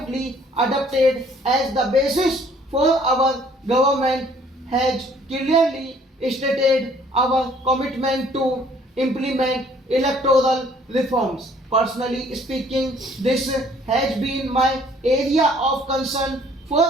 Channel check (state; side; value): normal; both; correlation 0.59